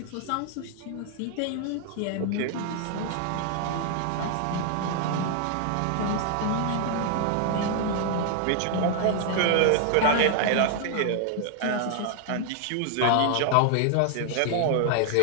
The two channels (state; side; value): different; both; correlation 0.00